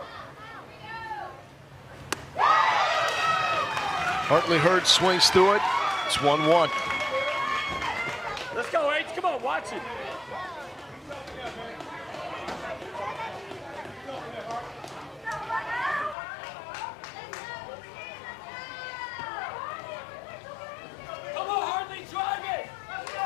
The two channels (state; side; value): drops out; right; at 16.2 s